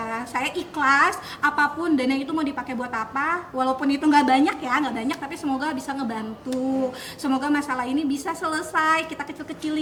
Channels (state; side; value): identical; both; correlation 1.00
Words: Saya ikhlas apapun dana itu mau dipakai buat apa, walaupun itu nggak banyak ya, nggak banyak, tapi semoga bisa ngebantu. Semoga masalah ini bisa selesai, kita